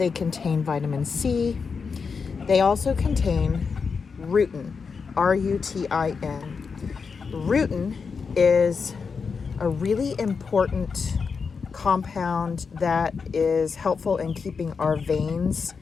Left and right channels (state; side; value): quieter; right; 5.4 dB